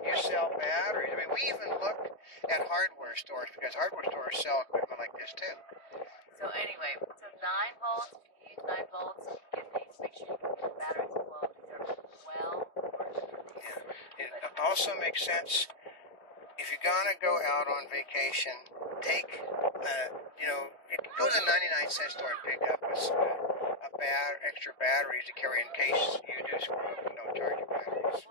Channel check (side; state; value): right; late; 3.2 ms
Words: you sell batteries. I mean, we even looked at hardware stores because hardware stores sell equipment like this too. So anyway, 9 volts. If you use 9 volts, you get these. Make sure you get the batteries as well. These are well worth it for these. Yeah. It also makes sense if you're gonna go out on vacation. Take, go to the 99-cent store and pick up extra batteries to carry in case you do screw up and don't charge your batteries.